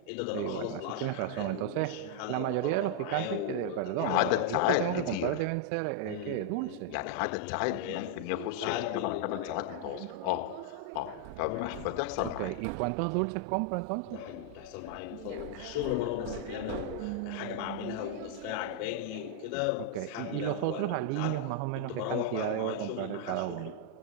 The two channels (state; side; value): different; both; correlation 0.00